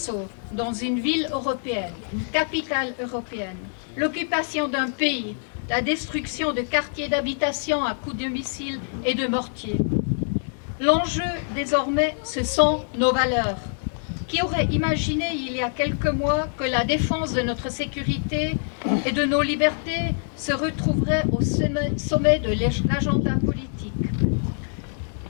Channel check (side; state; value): right; silent; 62 dB below the other